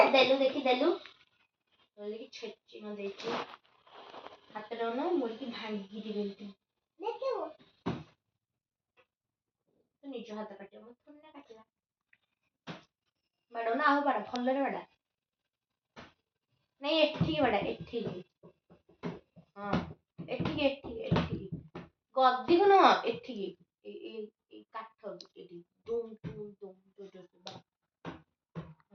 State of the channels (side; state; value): both; identical; correlation 1.00